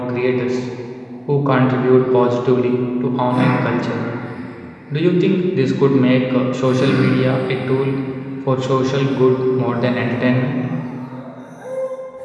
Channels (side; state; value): both; identical; correlation 1.00